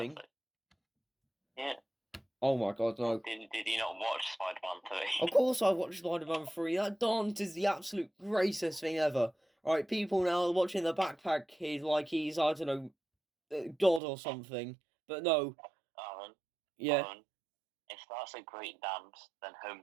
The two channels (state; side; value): drops out; left; at 14.0 s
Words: Yeah. Oh my god, no. Did you not watch Spider-Man 3? Of course I watched Spider-Man 3. That dance is the absolute greatest thing ever. Right, people now watching the backpack kid like he's, I don't know, God or something. But no. Aaron, yeah. Aaron, if that's a great dance, then Home